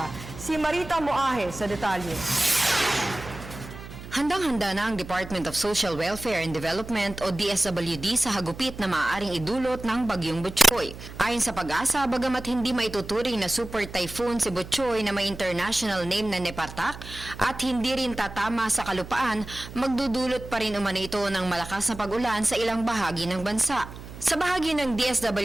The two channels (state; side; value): noise; right; hum, 13 dB below the sound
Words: Si Marita Moahe sa detalye. Handang-handa na ang Department of Social Welfare and Development o DSWD sa hagupit na maaaring idulot ng Bagyong Butchoy. Ayon sa Pag-asa, bagamat hindi maituturing na super typhoon si Butchoy na may international name na Nepartak at hindi rin tatama sa kalupaan, magdudulot pa rin umano ito ng malakas na pag-ulan sa ilang bahagi ng bansa. Sa bahagi ng